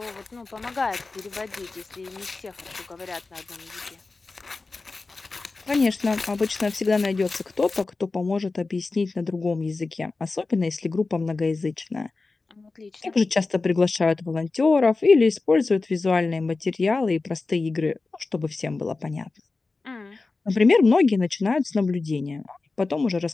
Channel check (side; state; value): right; quieter; 3.7 dB